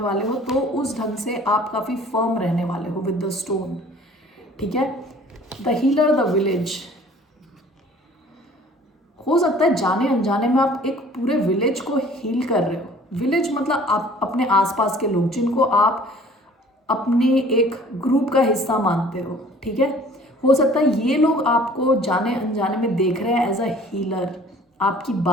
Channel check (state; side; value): normal; both; correlation 0.51